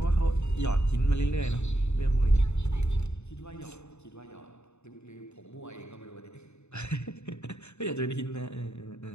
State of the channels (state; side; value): late; right; 0.81 ms